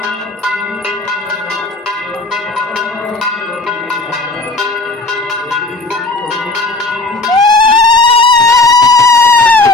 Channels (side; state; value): right; quieter; 3.2 dB